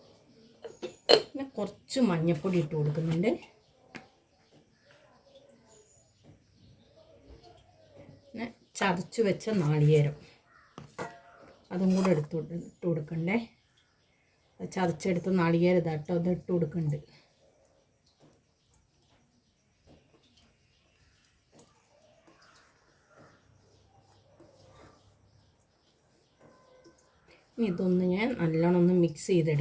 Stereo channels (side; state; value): both; identical; correlation 1.00